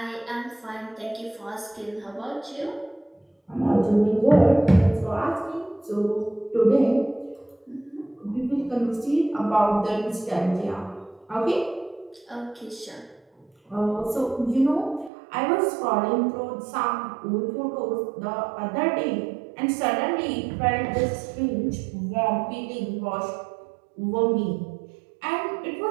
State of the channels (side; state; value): left; drops out; at 15.1 s